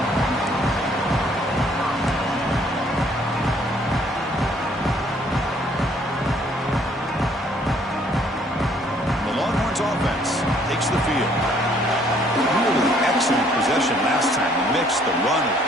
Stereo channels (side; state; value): both; normal; correlation 0.63